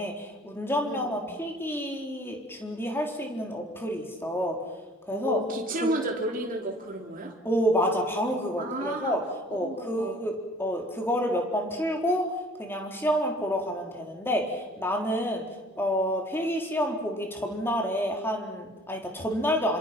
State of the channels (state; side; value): normal; both; correlation 0.52